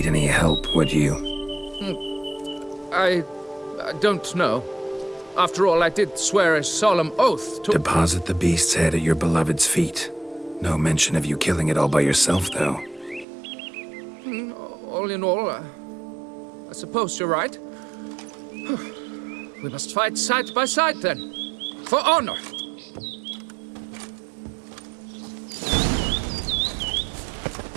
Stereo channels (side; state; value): left; drops out; at 13.2 s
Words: any help, would you? I don't know. After all, I did swear a solemn oath to— Deposit the beast's head at your beloved's feet. No mention of you killing it all by yourself, though. All in all, I suppose you're right. We must fight side by side, then. For honor.